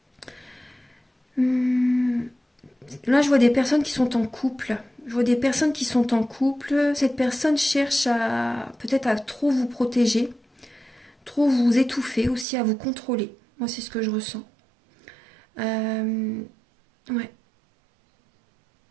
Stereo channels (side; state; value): left; drops out; at 12.5 s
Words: Là, je vois des personnes qui sont en couple. Je vois des personnes qui sont en couple. Cette personne cherche peut-être à trop vous protéger, trop vous étouffer aussi, à vous contrôler. Moi, c'est ce que je ressens. Ouais.